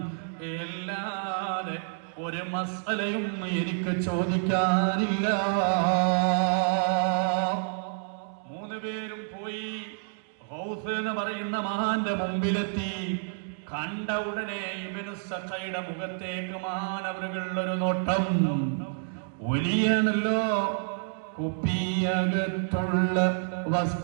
എല്ലാതെ ഒരു മസ്അലയും എനിക്ക് ചോദിക്കാനില്ല. മൂന്നുപേരും പോയി ഗൗസ് എന്ന് പറയുന്ന മഹാന്റെ മുമ്പിലെത്തി. കണ്ട ഉടനെ ഇബ്നു സഖയുടെ മുഖത്തേക്ക് മഹാനവറുകൾ ഒരു നോട്ടം. വലിയാണല്ലോ, കുപ്പിയകത്തുള്ള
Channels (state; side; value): silent; left; digital silence